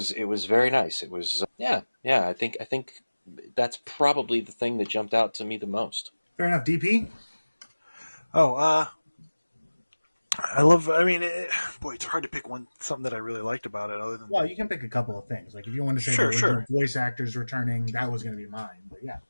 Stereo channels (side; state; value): both; inverted; correlation -1.00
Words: very nice. It was yeah. I think that's probably the thing that jumped out to me the most. Fair enough. DP? I love. I mean, it's hard to pick something that I really liked about it. Other than you can pick a couple of things. Like if you want to say the original voice actors returning, that was going to be mine. But yeah.